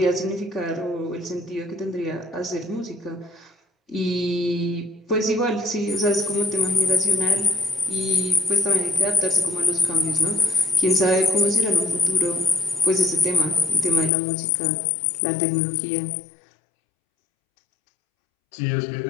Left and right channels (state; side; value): drops out; right; at 14.1 s